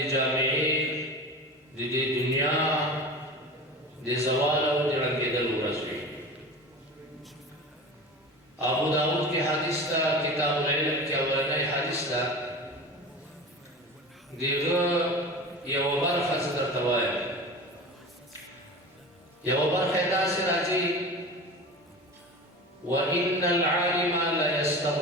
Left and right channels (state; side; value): normal; both; correlation 0.32